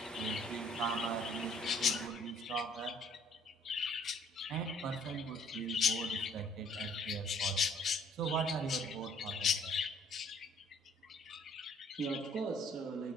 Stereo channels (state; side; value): normal; both; correlation 0.60